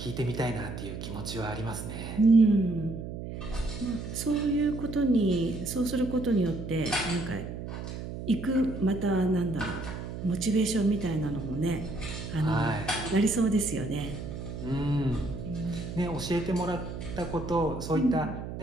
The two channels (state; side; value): noise; right; hum, 8 dB below the sound